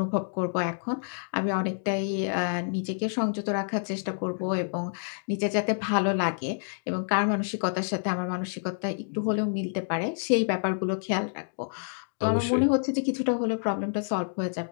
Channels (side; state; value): right; silent; digital silence